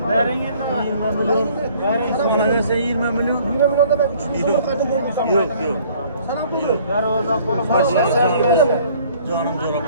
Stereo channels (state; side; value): inverted; both; correlation -0.56